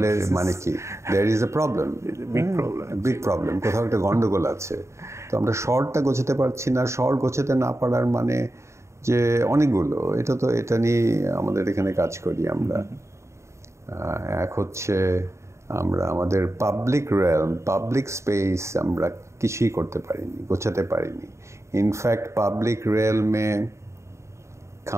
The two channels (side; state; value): left; late; 0.14 ms